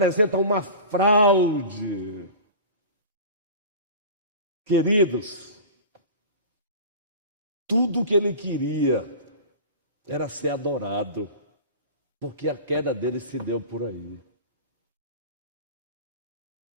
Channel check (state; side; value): inverted; both; correlation -0.35